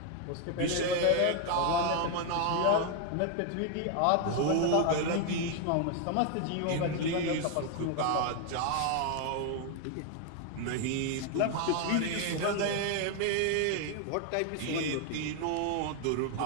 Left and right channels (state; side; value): different; both; correlation 0.01